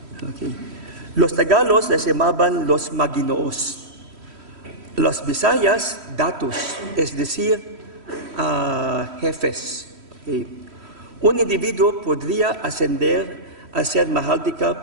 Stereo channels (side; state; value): left; late; 3.1 ms